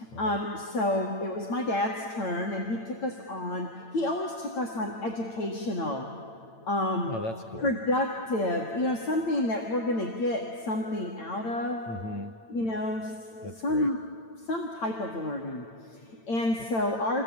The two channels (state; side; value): late; right; 8.9 ms